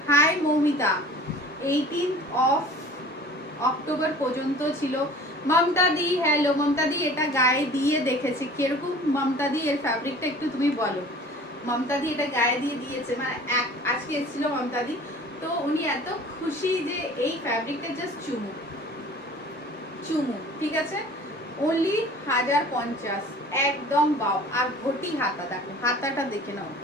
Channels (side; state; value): both; normal; correlation 0.45